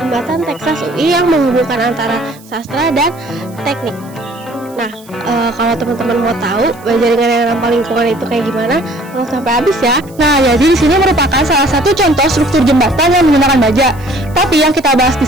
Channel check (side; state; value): right; noise; hiss, 25 dB below the sound